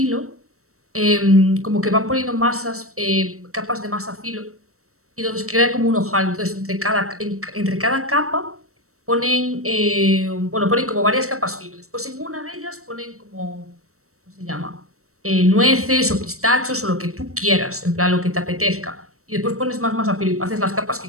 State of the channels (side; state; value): left; late; 0.64 ms